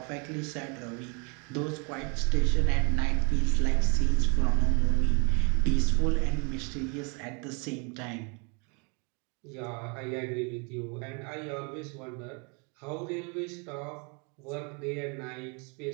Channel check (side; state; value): left; quieter; 34.0 dB